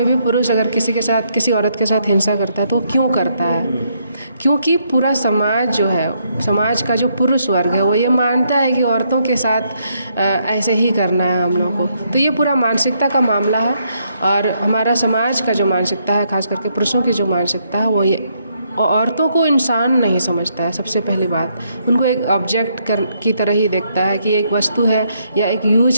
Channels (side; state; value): both; inverted; correlation -0.74